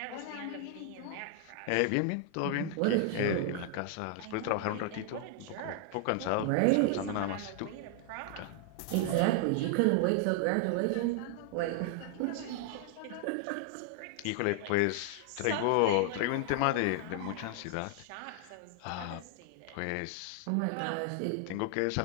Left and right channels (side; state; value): both; different; correlation 0.00